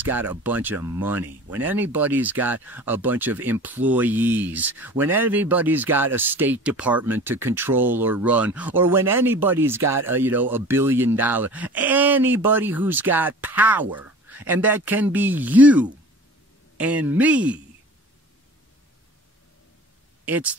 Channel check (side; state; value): both; normal; correlation 0.41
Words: got a bunch of money, when anybody's got a bunch of employees, when anybody's got a State Department to control or run, or when anybody's got $1 billion, anybody who's got power, and that can be you and me. It's